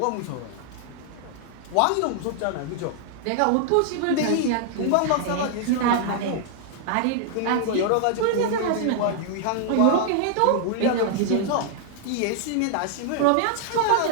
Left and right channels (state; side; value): different; both; correlation 0.00